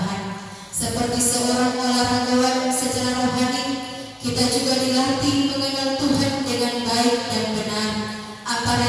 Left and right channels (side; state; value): both; identical; correlation 1.00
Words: Seperti seorang olahragawan secara rohani, kita juga dilatih mengenal Tuhan dengan baik dan benar, apa